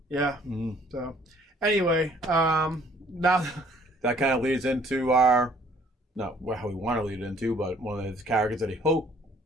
So... Anyway, now that kind of leads into not how we want to lead it into, but one of his characters that he hoped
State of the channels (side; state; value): both; normal; correlation 0.59